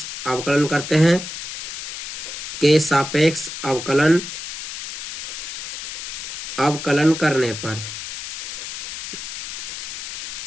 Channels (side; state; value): left; noise; hiss, 8 dB below the sound